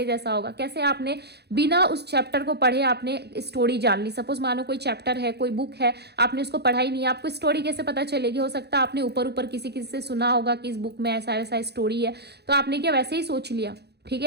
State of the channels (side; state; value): left; late; 0.48 ms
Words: जैसा होगा? कैसे आपने बिना उस चैप्टर को पढ़े आपने स्टोरी जान ली। सपोज मानो कोई चैप्टर है, कोई बुक है, आपने उसको पढ़ा ही नहीं, आपको स्टोरी कैसे पता चलेगी? हो सकता है आपने ऊपर ऊपर किसी किसी से सुना होगा कि इस बुक में ऐसा ऐसा स्टोरी है, तो आपने क्या वैसे ही सोच लिया। ठीक